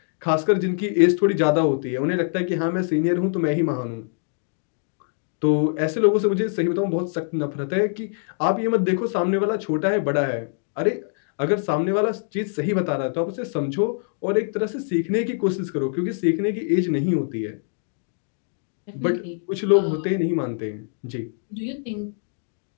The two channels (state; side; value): silent; right; digital silence